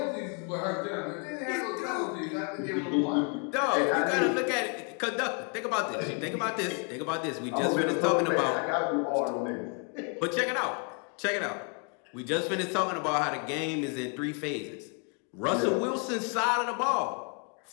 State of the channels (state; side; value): quieter; right; 37.5 dB